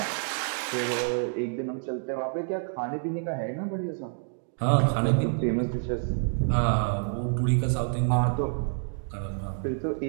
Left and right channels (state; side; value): silent; left; 59 dB below the other